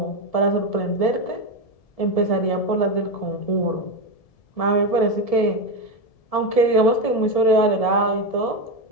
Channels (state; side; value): late; right; 1.7 ms